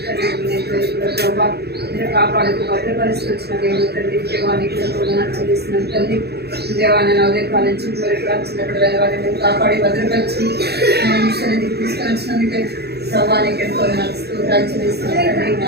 తల్లి ప్రభా నేను కాపాడుతూ భద్రపరిస్థితి వచ్చిన దేవుడు తల్లి దేవానికి ఎంతో చేసిన తల్లి దేవాన్ని నా ఉదయకాల నుంచి వచ్చినప్పుడు దేవాన్ని నేను కాపాడి భద్రపరిచి సన్నిధికి తీసుకొచ్చినందుకే ప్రభానికి ఎంతో స్తోత్రాలు చెల్లిస్తున్నాను.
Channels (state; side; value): late; left; 0.47 ms